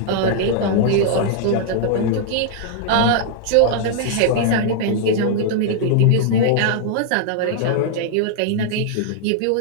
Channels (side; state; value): both; different; correlation -0.01